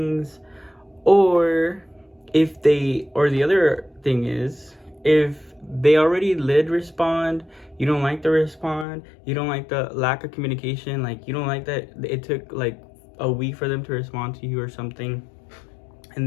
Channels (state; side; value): drops out; right; at 8.8 s